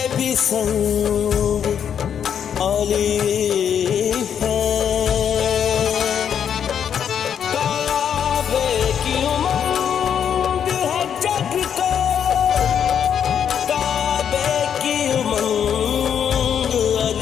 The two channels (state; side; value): quieter; right; 8.3 dB